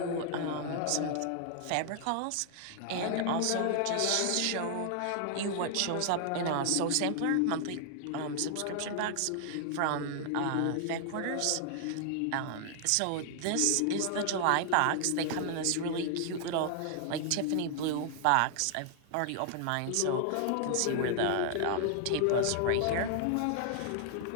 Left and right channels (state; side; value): different; both; correlation 0.00